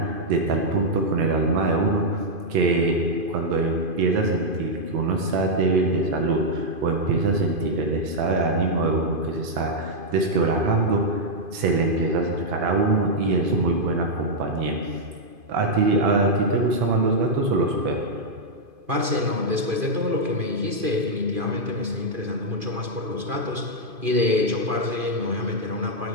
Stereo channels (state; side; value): late; left; 2.5 ms